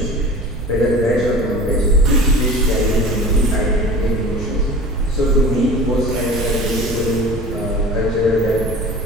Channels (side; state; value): right; noise; rumble, 9 dB below the sound